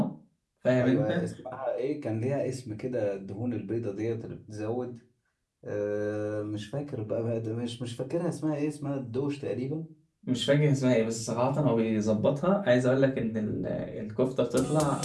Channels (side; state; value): both; identical; correlation 1.00